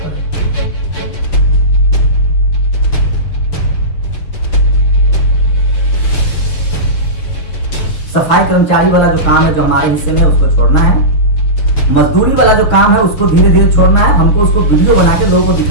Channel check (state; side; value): late; right; 6.8 ms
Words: सफाई कर्मचारी वाला जो काम है जो हमारे हिस्से में उसको छोड़ना है, मजदूरी वाला जो काम है उसको धीरे धीरे छोड़ना है। हमको उसको वीडियो बना के लोगों को